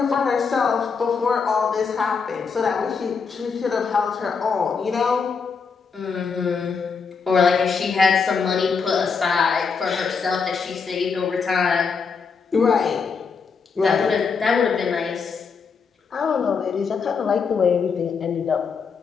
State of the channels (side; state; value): right; quieter; 5.5 dB